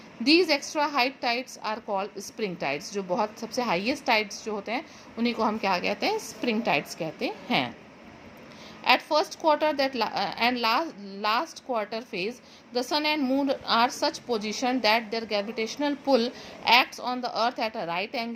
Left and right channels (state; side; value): identical; both; correlation 1.00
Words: These extra high tides are called spring tides. जो बहुत सबसे हाईएस्ट टाइड्स जो होते हैं उन्हीं को हम क्या कहते हैं, स्प्रिंग टाइड्स कहते हैं. At first quarter and last quarter phase, the sun and moon are such position that their gravitational pull acts on the earth at a right